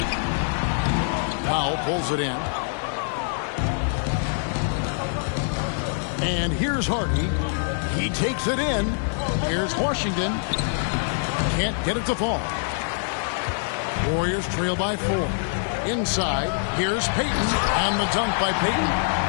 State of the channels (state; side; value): silent; right; digital silence